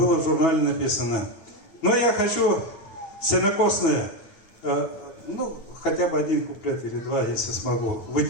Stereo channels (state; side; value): late; right; 8.9 ms